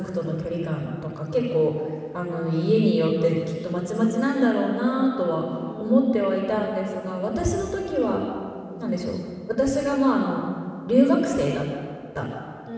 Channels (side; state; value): both; identical; correlation 1.00